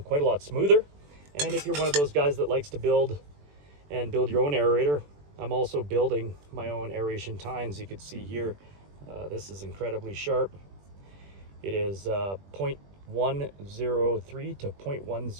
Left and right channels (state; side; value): late; left; 21 ms